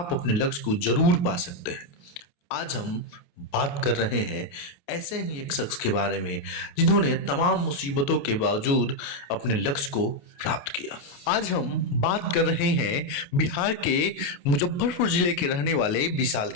अपने लक्ष्य को जरूर पा सकते हैं। आज हम बात कर रहे हैं ऐसे ही एक शख्स के बारे में जिन्होंने तमाम मुसीबतों के बावजूद अपने लक्ष्य को प्राप्त किया। आज हम बात कर रहे हैं बिहार के मुजफ्फरपुर जिले के रहने वाले विशाल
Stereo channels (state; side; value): late; right; 28 ms